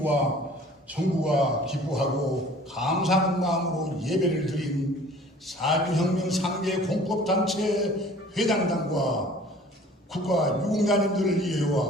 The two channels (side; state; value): both; normal; correlation 0.49